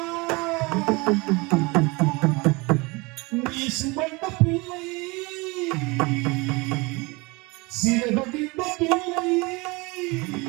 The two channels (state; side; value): quieter; left; 25.7 dB